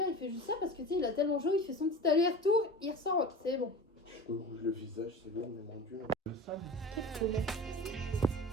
il fait juste ça parce que tu sais, il a tellement chaud, il fait son petit aller-retour, il ressort, c'est bon. Je me rouge le visage, c'est bon, mais mon dieu. Le sable.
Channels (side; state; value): both; normal; correlation 0.34